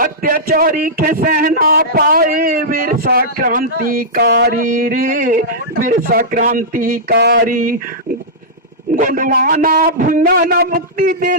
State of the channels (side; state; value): both; normal; correlation -0.13